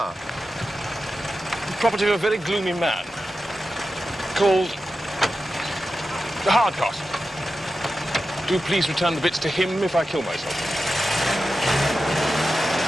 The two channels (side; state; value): both; normal; correlation 0.91